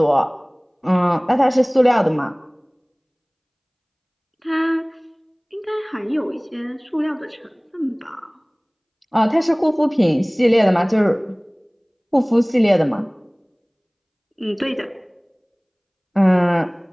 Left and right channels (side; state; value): both; identical; correlation 1.00